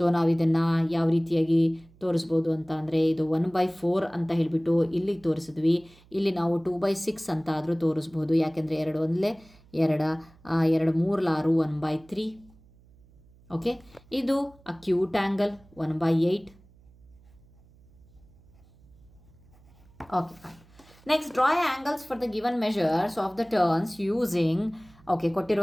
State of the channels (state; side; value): noise; right; hum, 27 dB below the sound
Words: ನಾವು ಇದನ್ನು ಯಾವ ರೀತಿಯಾಗಿ ತೋರಿಸ್ಬೋದು ಅಂತ ಅಂದರೆ, ಇದು 1/4 ಅಂತ ಹೇಳಿಬಿಟ್ಟು ಇಲ್ಲಿಗೆ ತೋರಿಸಿದ್ವಿ. ಇಲ್ಲಿ ನಾವು 2/6 ಅಂತ ಆದರೂ ತೋರಿಸ್ಬೋದು, ಯಾಕೆಂದರೆ 2 ಒಂದಲೇ 2 2 3 6 1/3. ಓಕೆ, ಇದು acute angle 1/8. Okay, next draw angles for the given measures of the turns using. Okay,